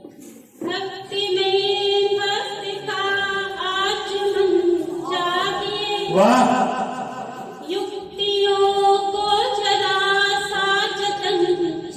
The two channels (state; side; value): identical; both; correlation 1.00